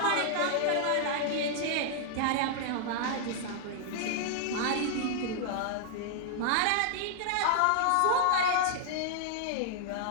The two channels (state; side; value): different; both; correlation -0.01